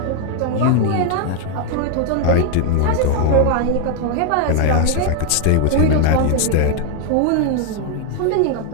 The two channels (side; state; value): both; different; correlation 0.00